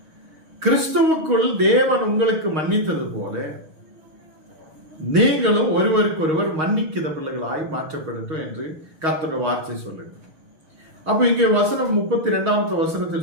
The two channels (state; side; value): late; left; 6.4 ms